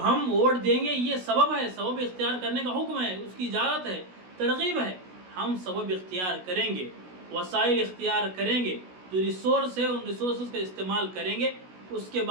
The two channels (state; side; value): late; left; 16 ms